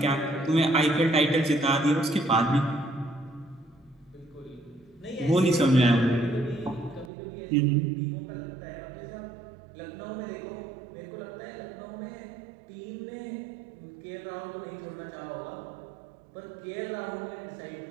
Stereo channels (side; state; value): left; drops out; at 7.1 s